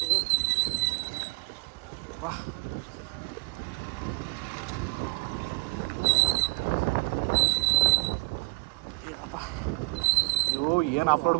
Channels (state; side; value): quieter; left; 30.6 dB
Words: ವಾ, ಅಯ್ಯೋ ಏನು ಆಫ್ ರೋಡ್